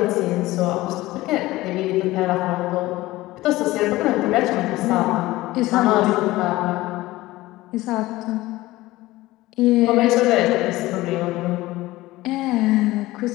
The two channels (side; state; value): right; quieter; 18.1 dB